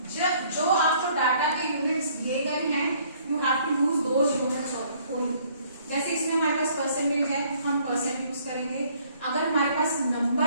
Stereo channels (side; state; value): both; inverted; correlation -0.61